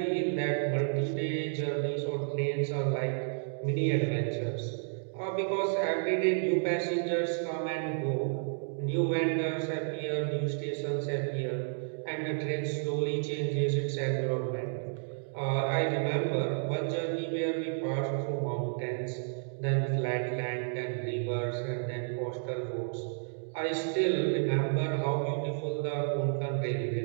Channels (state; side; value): silent; left; digital silence